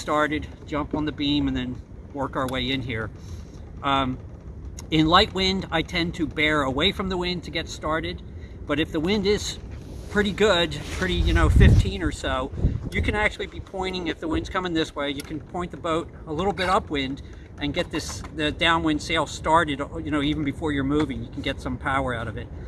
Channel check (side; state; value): both; identical; correlation 1.00